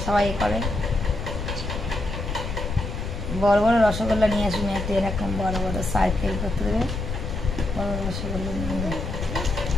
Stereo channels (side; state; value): left; noise; rumble, 5 dB below the sound